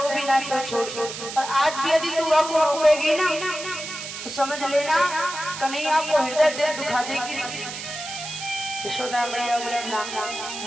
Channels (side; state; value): right; noise; hiss, 8 dB below the sound